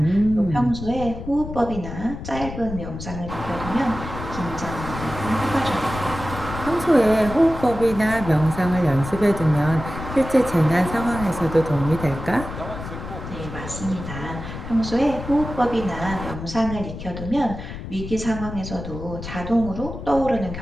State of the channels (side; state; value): left; noise; rumble, 9 dB below the sound